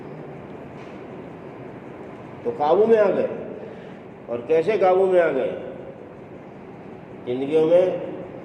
تو قابو میں آ گئے۔ اور کیسے قابو میں آ گئے؟ زندگیوں میں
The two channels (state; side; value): identical; both; correlation 1.00